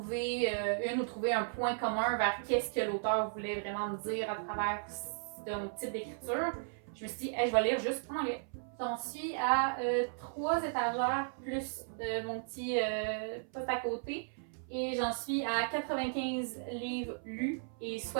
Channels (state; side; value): silent; left; 54 dB below the other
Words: une ou trouver un point commun vers qu'est-ce que l'auteur voulait vraiment me dire à travers son type d'écriture, je me suis dit, hey, je vais lire juste en anglais. J'en suis à 3 étagères plus mon petit poste à côté et j'en suis à 95 livres lus et